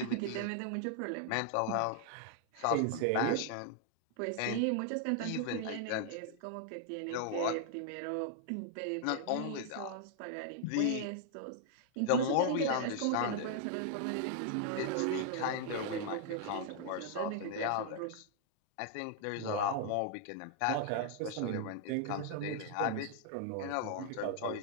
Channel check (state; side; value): different; both; correlation 0.00